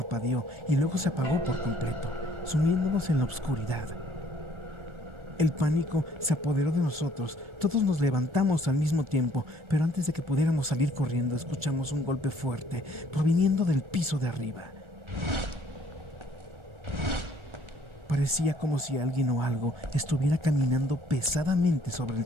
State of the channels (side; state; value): left; late; 1.4 ms